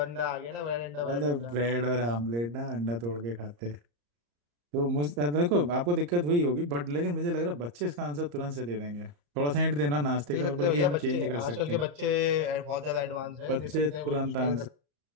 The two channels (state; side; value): late; left; 34 ms